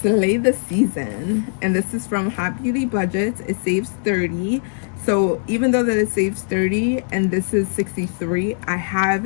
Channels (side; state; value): right; silent; 65 dB below the other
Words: the season. And this is from Hot Beauty Budgets. It saves 30. So even though that it saves 30 and this is 63, I have